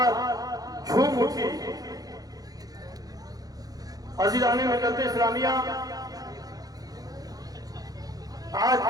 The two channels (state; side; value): late; left; 0.18 ms